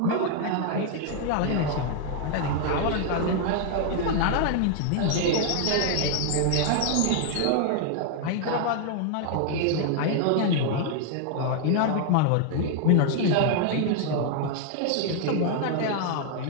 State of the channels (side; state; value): both; different; correlation 0.00